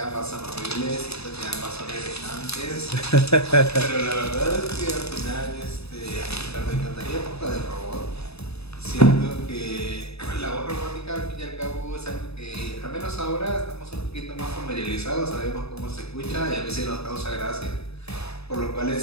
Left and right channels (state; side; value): late; right; 0.79 ms